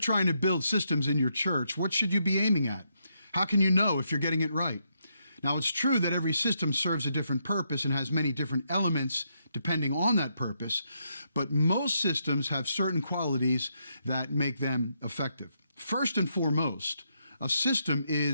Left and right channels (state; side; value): inverted; both; correlation -0.78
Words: to build systems in your church, what should you be aiming at? How can you know if you're getting it right? Now, it's true that every system serves a different purpose and has many different elements depending on that purpose, but most systems have certain qualities that make them effective. First and foremost, a system